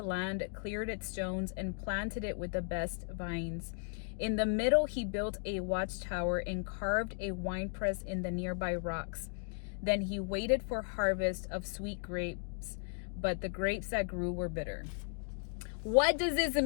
land, cleared its stones, and planted it with the best vines. In the middle he built a watchtower and carved a winepress in the nearby rocks. Then he waited for harvest of sweet grapes, but the grapes that grew were bitter." What does this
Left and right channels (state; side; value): silent; right; 54 dB below the other